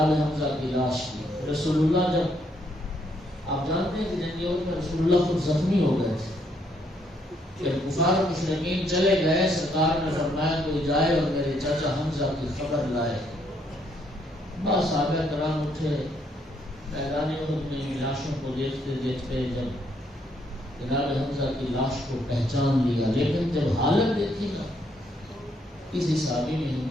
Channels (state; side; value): normal; both; correlation 0.72